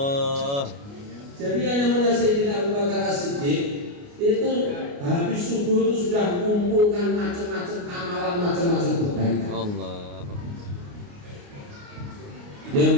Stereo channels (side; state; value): left; late; 29 ms